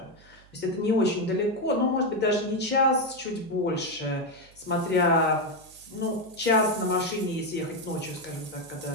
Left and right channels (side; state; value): right; noise; hum, 27 dB below the sound